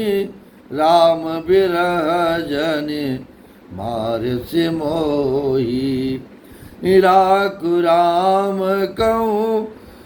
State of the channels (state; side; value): identical; both; correlation 1.00